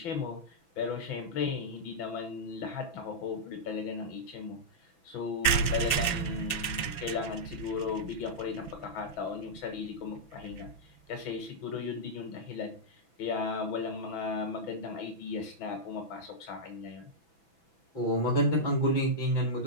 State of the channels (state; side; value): late; right; 6.0 ms